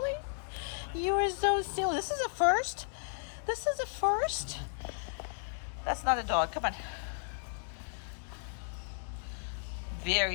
You are so silly. This is a first. This is a first. That's not a dog. Come on.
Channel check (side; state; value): right; silent; digital silence